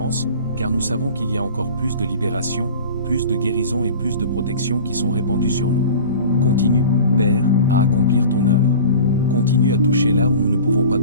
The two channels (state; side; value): inverted; both; correlation -0.39